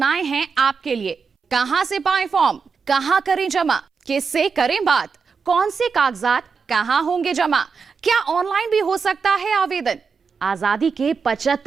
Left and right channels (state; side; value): quieter; left; 5.4 dB